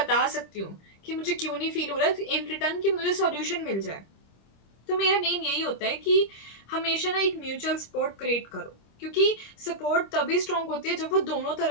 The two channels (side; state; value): right; late; 26 ms